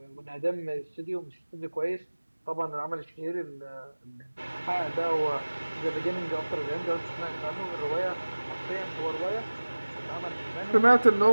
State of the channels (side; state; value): both; inverted; correlation -1.00